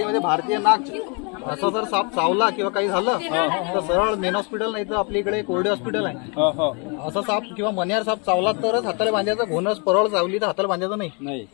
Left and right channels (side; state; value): right; quieter; 34.7 dB